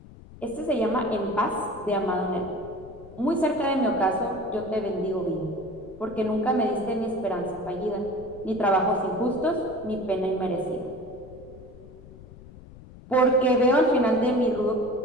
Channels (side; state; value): left; noise; rumble, 19 dB below the sound